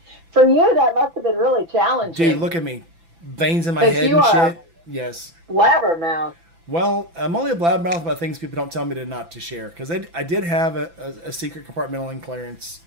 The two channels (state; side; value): late; left; 5.9 ms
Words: For you, that must have been really challenging. Dude, look at me. Veins in my 'Cause head you and are- shit. Yes. Blabbermouth. Well, I'm only a blabbermouth about things people don't tell me not to share. Because I did have a secret compartmental clearance.